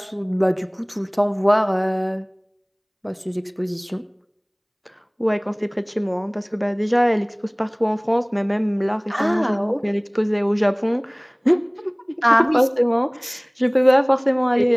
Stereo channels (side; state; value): both; identical; correlation 1.00